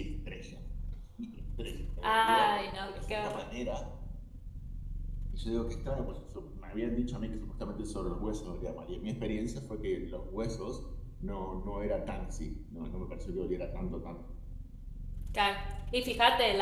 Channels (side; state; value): both; identical; correlation 1.00